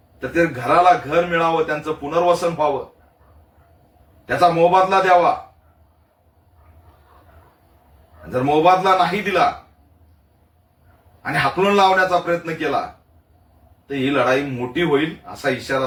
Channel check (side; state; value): both; identical; correlation 1.00